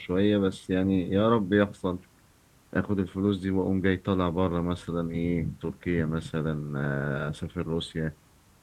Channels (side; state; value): both; identical; correlation 1.00